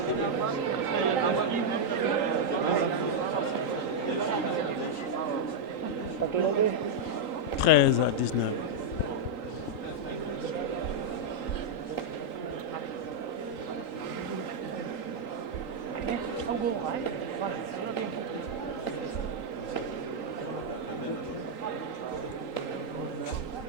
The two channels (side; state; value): right; late; 3.8 ms